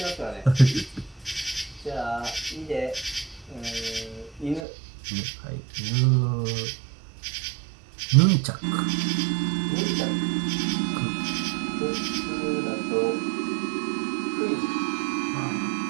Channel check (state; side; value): drops out; left; at 4.7 s